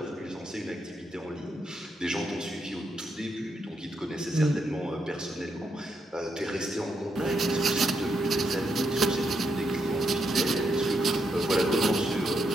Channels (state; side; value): normal; both; correlation 0.80